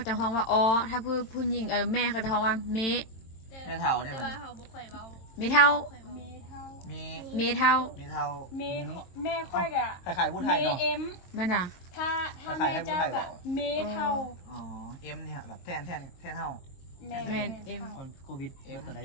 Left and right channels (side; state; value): right; late; 22 ms